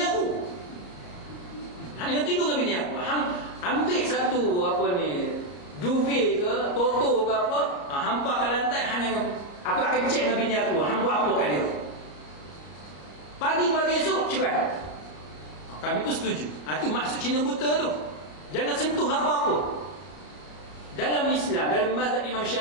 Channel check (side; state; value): right; late; 34 ms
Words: aku. Hang jangan tidur dengan bini aku. Hang ambil satu duvet ke, toto ke apa, hampa kat lantai, hang jangan, aku akan cek dengan bini aku, hang buat apa kat dia. Pagi-pagi esok cerai. Kami pun setuju. Itu maksud Cina buta tu. Jangan sentuh apa-apa. Dalam Islam, dalam mazhab Imam